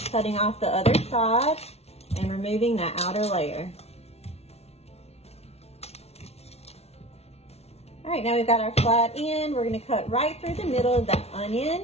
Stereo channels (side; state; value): right; late; 0.31 ms